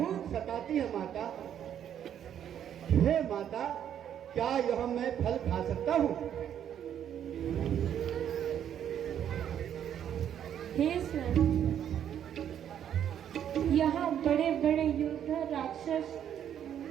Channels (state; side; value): quieter; left; 9.7 dB